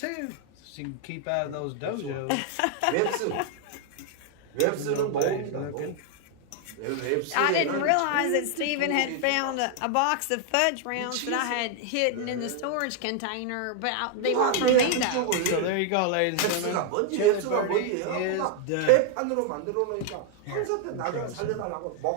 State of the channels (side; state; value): both; different; correlation 0.00